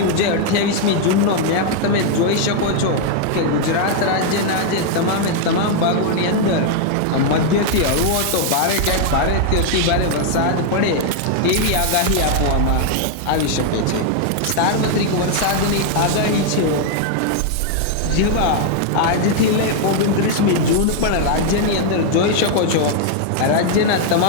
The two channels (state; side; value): different; both; correlation 0.00